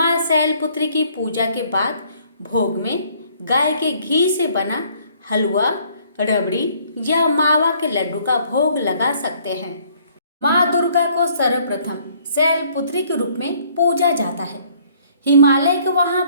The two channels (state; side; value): inverted; both; correlation -0.61